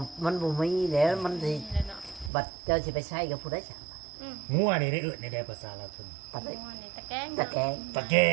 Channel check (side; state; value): left; drops out; at 2.3 s